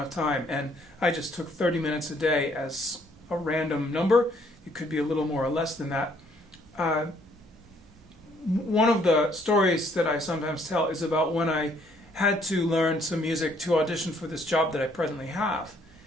of time. And I just took 30 minutes a day as a random number. It could be a little more or less than that. One of the stories that I sometimes tell is about when I had to learn some music to audition for this job that I presently have.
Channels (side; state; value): both; normal; correlation 0.65